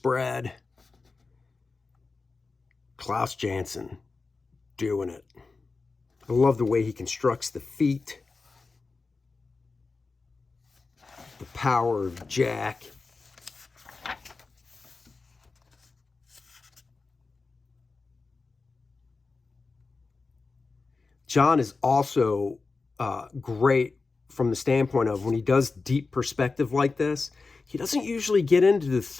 Klaus Janson doing it. I love the way he constructs the feet. The power of Jack. John is also great from the standpoint of when he does deep perspective like this, he doesn't usually get into the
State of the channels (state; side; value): quieter; right; 4.1 dB